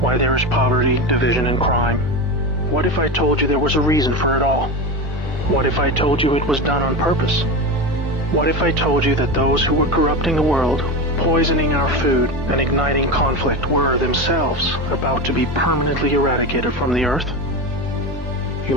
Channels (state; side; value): normal; both; correlation 0.21